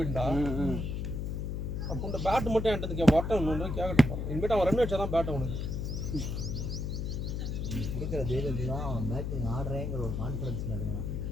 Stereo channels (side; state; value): left; noise; hum, 2 dB below the sound